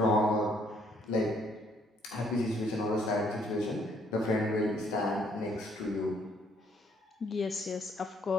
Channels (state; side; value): normal; both; correlation 0.67